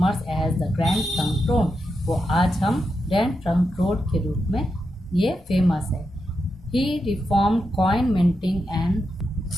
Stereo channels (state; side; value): normal; both; correlation 0.86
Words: as the grand trunk road. वो आज हम ग्रैंड ट्रंक रोड के रूप में ये फेमस है। He reform coin minting and